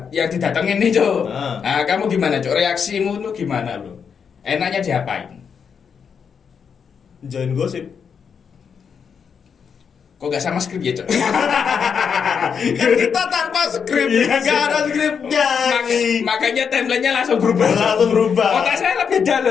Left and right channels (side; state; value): right; quieter; 6.7 dB